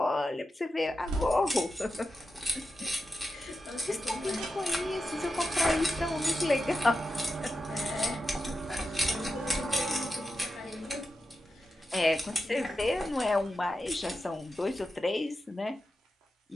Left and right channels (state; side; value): normal; both; correlation 0.90